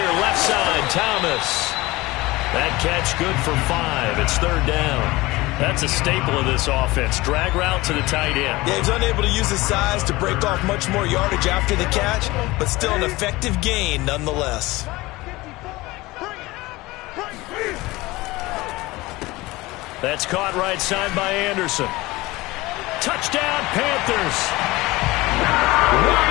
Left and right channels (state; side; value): quieter; right; 20.5 dB